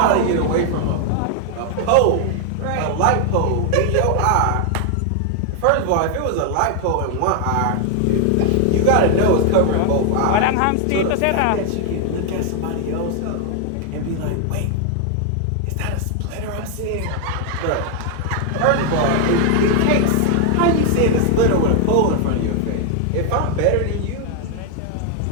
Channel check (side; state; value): both; different; correlation 0.00